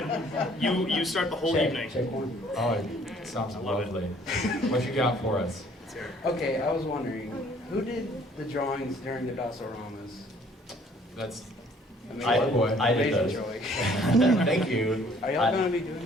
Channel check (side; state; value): both; normal; correlation 0.58